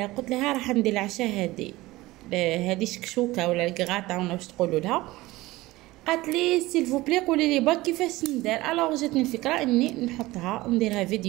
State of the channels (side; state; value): left; quieter; 19.0 dB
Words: قلت لها راح ندير العشاء هذه شكشوكه ولا الكغاطه ولا واش تقولوا لها. قالت لي سيل فو بلي قولي لي با كيفاش ندير. الوغ جاتني الفكره اني نحطها نديرها